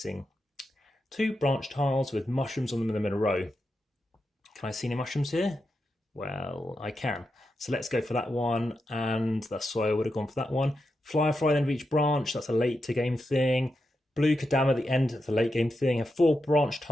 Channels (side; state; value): both; normal; correlation 0.87